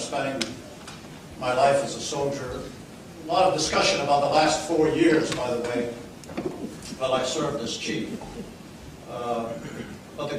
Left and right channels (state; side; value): identical; both; correlation 1.00